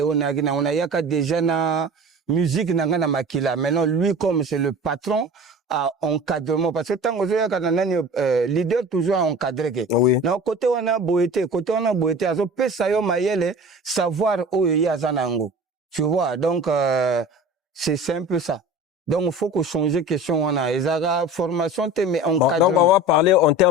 on a yaka déjà na musique nanga na makila. Maintenant lui comme c'est le patron à encadrement parce que tant que leader toujours à encadrer que na côté on a boité azo pesa yo mayele savoir où il y a zanango, tu vois, donc c'est un peu ça. Donc il faut qu'on change question on a ezara formation mais encadrement. Donc on va parler en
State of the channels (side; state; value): both; normal; correlation 0.38